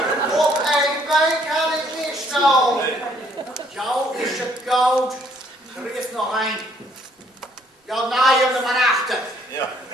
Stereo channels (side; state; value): both; normal; correlation 0.65